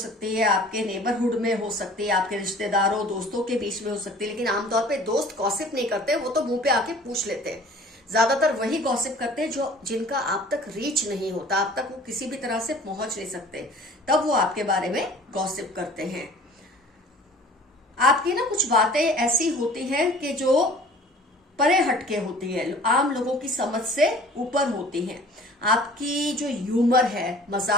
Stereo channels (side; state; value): both; normal; correlation 0.48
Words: है, आपके नेबरहुड में हो सकती है, आपके रिश्तेदारों दोस्तों के बीच में हो सकती है। लेकिन आमतौर पे दोस्त गॉसिप नहीं करते, वो तो मुंह पे आके पूछ लेते हैं। ज्यादातर वही गॉसिप करते हैं जो जिनका आप तक रीच नहीं होता, आप तक वो किसी भी तरह से पहुंच नहीं सकते, तब वो आपके बारे में गॉसिप करते हैं। आपकी ना कुछ बातें ऐसी होती हैं कि जो परे हटके होती है, आम लोगों की समझ से ऊपर होती हैं। आपकी जो ह्यूमर है,